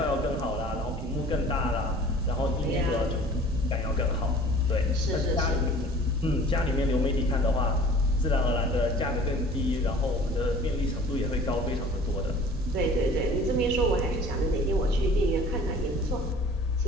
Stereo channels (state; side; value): normal; both; correlation 0.46